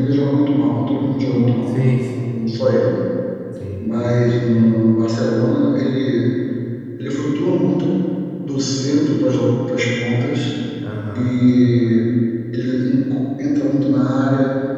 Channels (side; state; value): both; identical; correlation 1.00